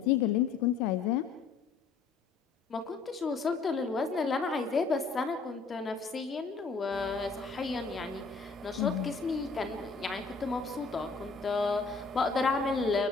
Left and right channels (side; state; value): right; quieter; 4.6 dB